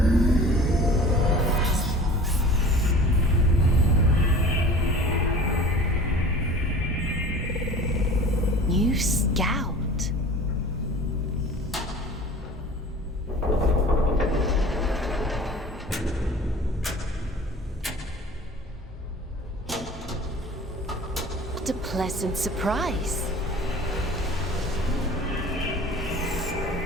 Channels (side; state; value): both; normal; correlation 0.42